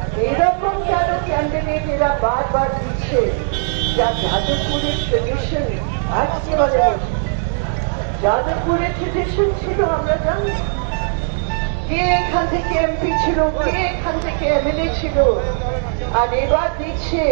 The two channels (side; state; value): left; silent; digital silence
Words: এইরকম কেন ক্যান্ডিডেট এরা বারবার দিচ্ছে, যা যাদবপুরের ট্রেডিশন আজকে বলে যাদবপুরের ট্রেডিশন ছিল আমরা জানি। কে এখান থেকে এমপি ছিল, কে এখান থেকে এমএলএ ছিল, আর এবার দিচ্ছে।